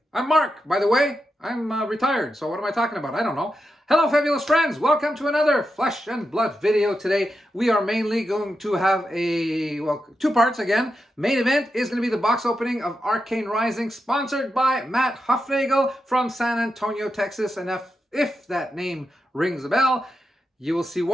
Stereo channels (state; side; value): normal; both; correlation 0.87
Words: I'm Mark, by the way. I'm retired, so what am I talking about? I don't know. Hello, fabulous friends. Welcome to another Flesh and Blood video today. We are mainly going to have two parts again. Main event is going to be the box opening of Arcane Rising, sponsored by Matt Huffnagel from San Antonio, Texas. And if that name rings a bell, you will see